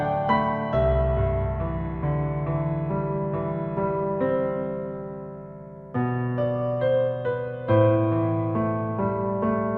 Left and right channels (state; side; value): identical; both; correlation 1.00